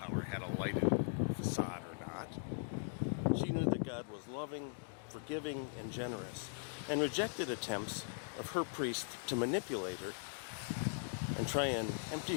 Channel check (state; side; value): silent; right; digital silence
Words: had a lighted facade or not. She knew that God was loving, forgiving, and generous, and rejected attempts of her priest to manipulate her and try and